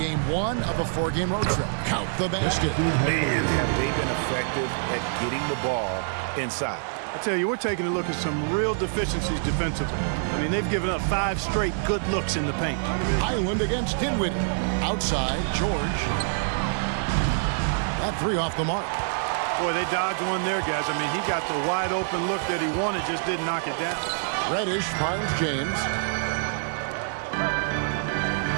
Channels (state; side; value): silent; left; digital silence